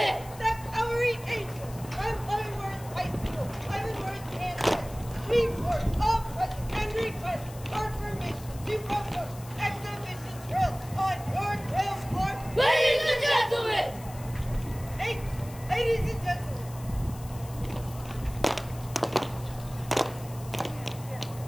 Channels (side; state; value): left; noise; hiss, 18 dB below the sound